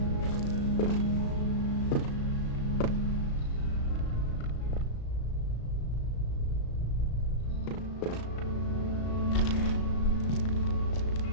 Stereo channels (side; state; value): right; late; 35 ms